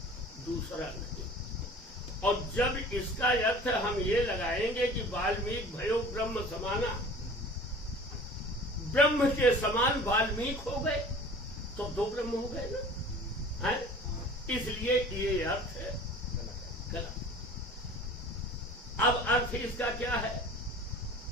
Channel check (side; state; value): both; normal; correlation 0.43